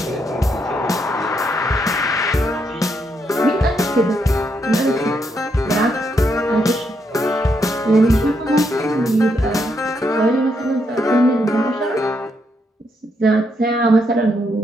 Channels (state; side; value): normal; both; correlation 0.78